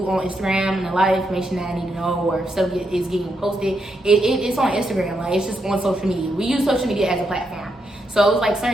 on Instagram, and a lot of information that I need to know or stuff is getting posted. It's on Instagram, like it's just on social media. We use social media as a platform, so it's like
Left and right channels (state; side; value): normal; both; correlation 0.81